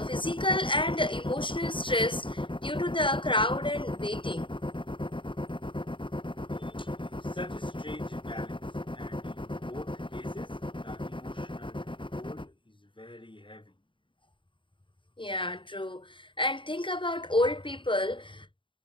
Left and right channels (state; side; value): late; right; 0.24 ms